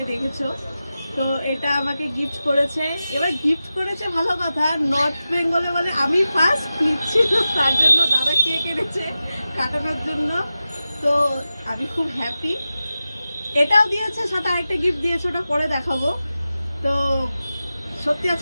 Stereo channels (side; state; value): both; inverted; correlation -0.94